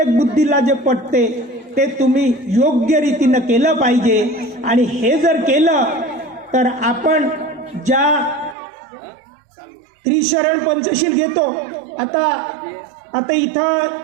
बुद्धीला जे पटते ते तुम्ही योग्य रीतीनं केलं पाहिजे. आणि हे जर केलं तर आपण ज्या त्रिशरण पंचशील घेतो, आता इथं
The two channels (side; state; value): left; drops out; at 8.6 s